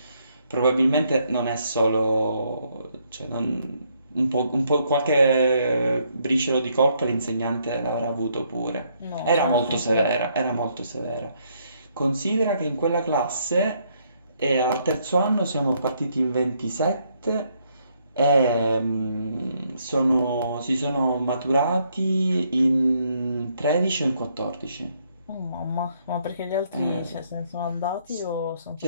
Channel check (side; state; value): both; inverted; correlation -0.72